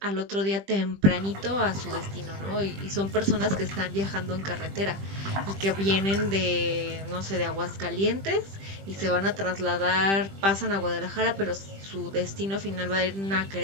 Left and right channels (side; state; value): left; late; 20 ms